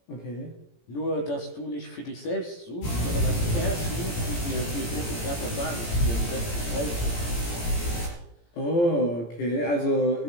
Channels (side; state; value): right; late; 17 ms